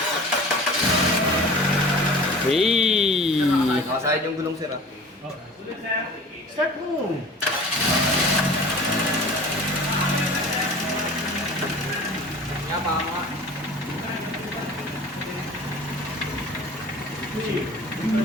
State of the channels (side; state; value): both; normal; correlation 0.41